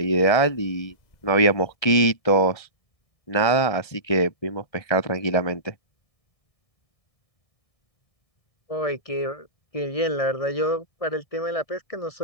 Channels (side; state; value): right; late; 1.6 ms